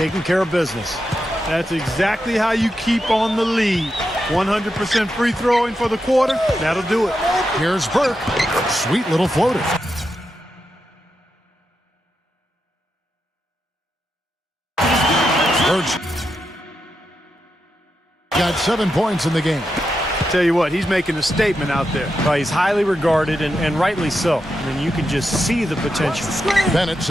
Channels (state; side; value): normal; both; correlation 0.87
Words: care of business. That's exactly how you keep on the lead. 100% free throwing for the quarter. That'll do it. Here's Burke. Sweet little floater. Burke's got 7 points in the game. Tell you what, he's making a statement out there. Well, he's highly regarded, and rightly so. I mean, you can just see the potential. Bennett